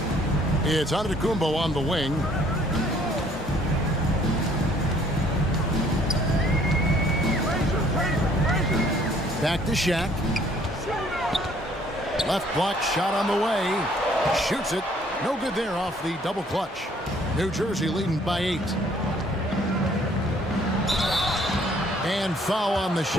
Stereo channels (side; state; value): both; normal; correlation 0.60